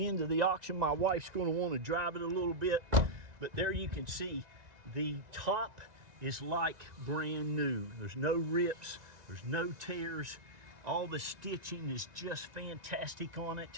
end of the auction. My wife's going to want to drive it a little bit. But there you can see the top is like brand new. There's no rips, there's no tears. All the stitching is just fantastic on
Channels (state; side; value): late; left; 1.9 ms